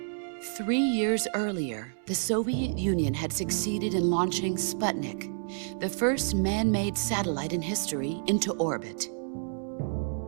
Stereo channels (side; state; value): left; silent; digital silence